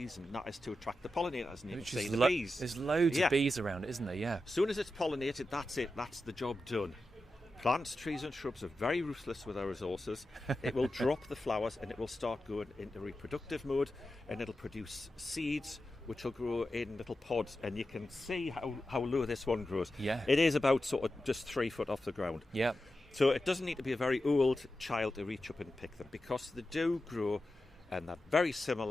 that is to attract the pollinators, and you can see the bees. There's loads of bees around, isn't there? Yeah. As soon as it's pollinated, that's it. That's the job done. Plants, trees and shrubs are very ruthless with their resources. It will drop the flowers and it will start going into reproductive mode, and it'll produce seeds which will grow in little pods, and you can see how low this one grows. Yeah. It is about sort of just 3 foot off the ground. Yeah. So it doesn't need to be a very old child to reach up and pick them, because they do grow, and they're very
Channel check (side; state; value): both; normal; correlation 0.91